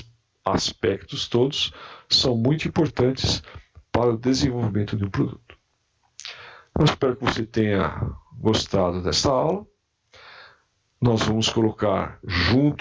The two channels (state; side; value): identical; both; correlation 1.00